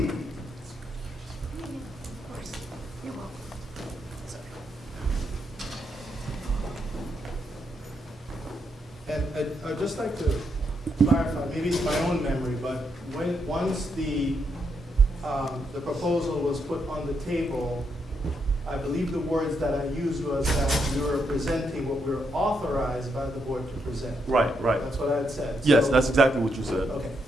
And I'd just like to clarify, maybe it's my own memory, but once the proposal was put on the table, I believe the words that I used was that we were presenting what we were authorized by the board to present. Right, right. That's what I had said. Yes, So- that's exactly what you said. Okay,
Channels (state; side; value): normal; both; correlation 0.79